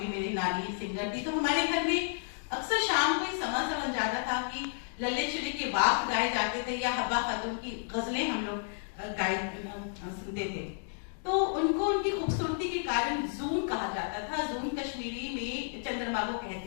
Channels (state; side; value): silent; right; digital silence